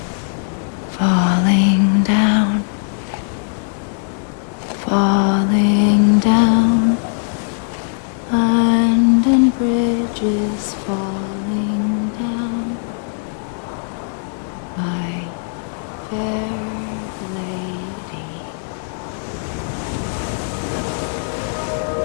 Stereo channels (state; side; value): silent; right; 58 dB below the other